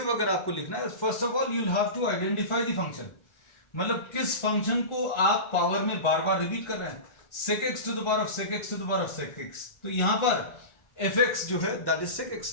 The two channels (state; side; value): late; right; 1.4 ms